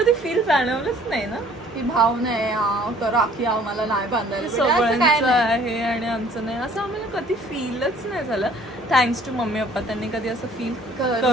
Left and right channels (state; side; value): normal; both; correlation 0.56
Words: फील जाणवलंच नाही ना की भाव नाही राखी आम्हाला नाही बांधायला सगळ्यांचं आहे आणि आमचं नाही असं आम्हाला कधी फीलच नाही झालं. थँक्स टू मम्मी पप्पा त्यांनी कधी असं फील